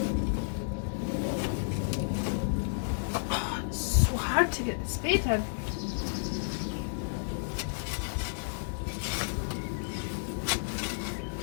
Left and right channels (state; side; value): silent; right; digital silence